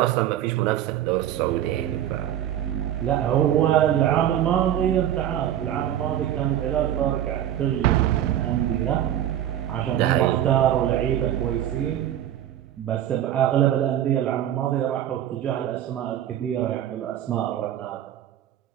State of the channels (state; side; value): quieter; left; 11.4 dB